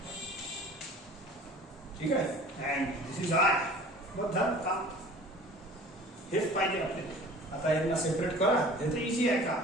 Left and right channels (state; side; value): normal; both; correlation 0.45